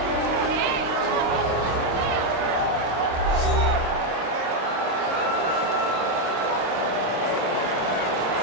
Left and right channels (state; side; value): late; left; 26 ms